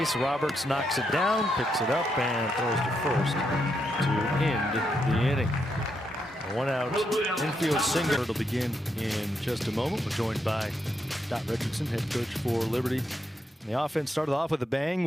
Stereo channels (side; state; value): both; normal; correlation 0.80